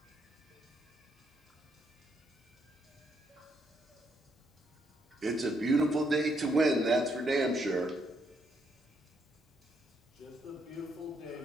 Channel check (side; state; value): both; normal; correlation 0.75